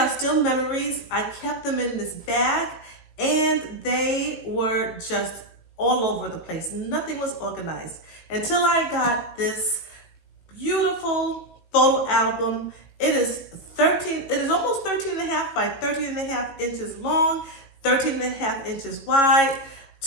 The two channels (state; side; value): late; right; 18 ms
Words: still memories. I kept them in this bag and they were just all over the place. Nothing was organized until I got this beautiful photo album. It is almost 13 and a half by 13 and a half inches long, 13 and a half inches wide,